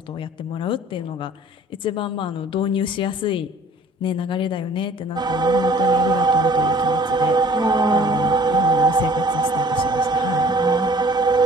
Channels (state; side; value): normal; both; correlation 0.52